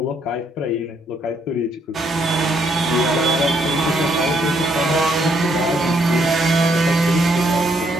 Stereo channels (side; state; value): both; normal; correlation 0.71